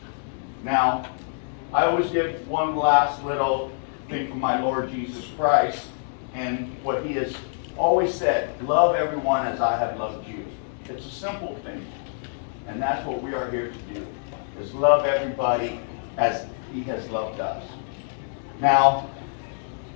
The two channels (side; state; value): right; silent; digital silence